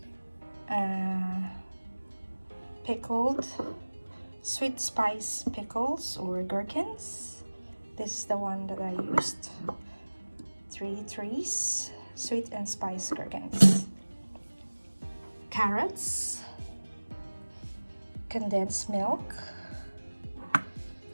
Pickled sweet spice pickles or gherkins. This is the one that I used. 3 trees sweet and spice gherkins. Carrots, condensed milk,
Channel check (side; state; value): both; inverted; correlation -1.00